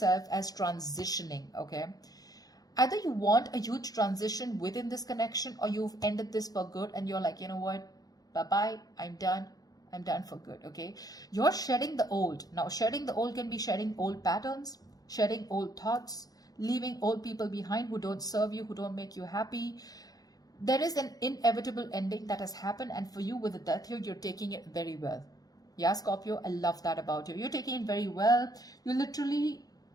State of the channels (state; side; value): late; right; 0.18 ms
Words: as transitioning, okay? Either you want a huge transition within this connection, or you've ended this for good and you're like, you know what? Bye-bye, I'm done for good, okay? You're shedding the old. Now, shedding the old can be shedding old patterns, shedding old thoughts, leaving old people behind who don't serve you, who don't make you happy. There is an inevitable ending that has happened, and for you with the Death here, you're taking it very well. Yeah, Scorpio, I love that about you. You're taking it very well. You're literally